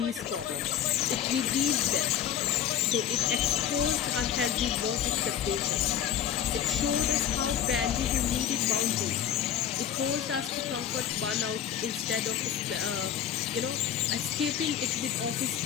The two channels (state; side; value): quieter; right; 9.6 dB